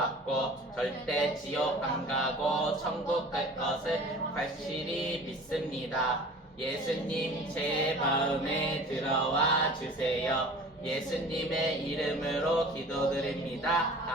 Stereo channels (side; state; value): both; normal; correlation 0.43